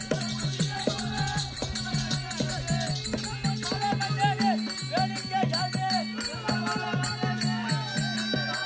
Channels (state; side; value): identical; both; correlation 1.00